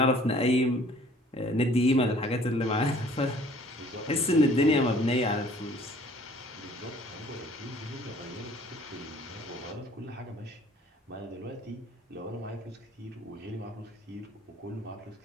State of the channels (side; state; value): both; normal; correlation 0.54